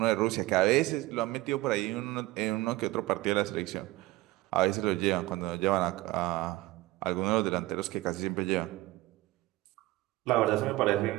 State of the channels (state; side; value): quieter; left; 18.4 dB